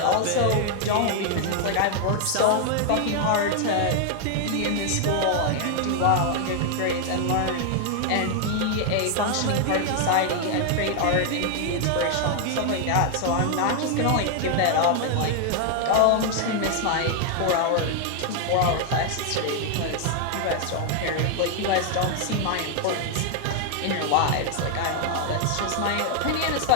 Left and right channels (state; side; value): different; both; correlation 0.00